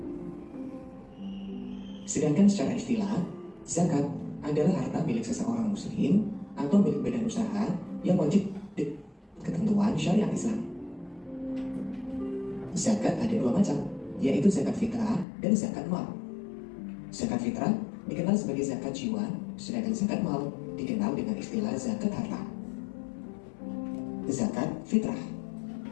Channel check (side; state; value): right; drops out; at 15.2 s